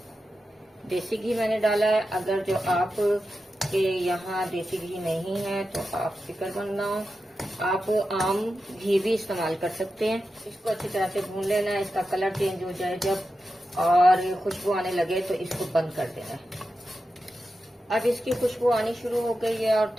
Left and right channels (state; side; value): normal; both; correlation 0.90